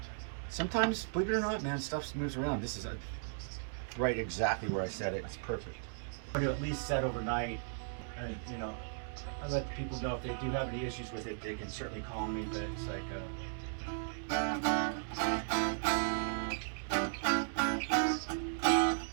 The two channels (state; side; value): silent; left; digital silence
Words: Sometimes, believe it or not, man, stuff moves around. This is right exactly where I set it. It's perfect. I'm going to at least set overnight, and you know, I let the people know if they do have any issues with it, they can certainly call me. But it's like, there